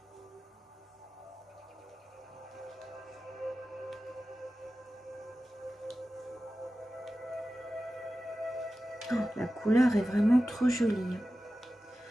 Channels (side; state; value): both; normal; correlation 0.94